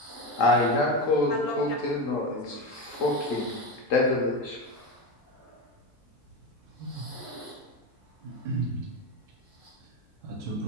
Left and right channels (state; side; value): normal; both; correlation 0.18